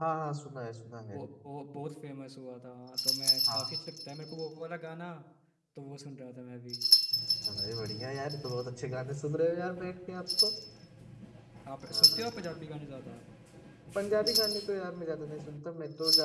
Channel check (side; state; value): both; identical; correlation 1.00